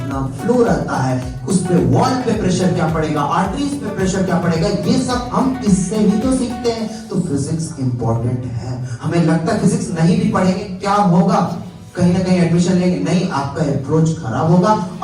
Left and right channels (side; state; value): both; identical; correlation 1.00